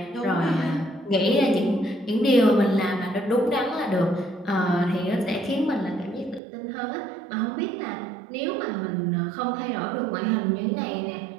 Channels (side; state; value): left; drops out; at 6.4 s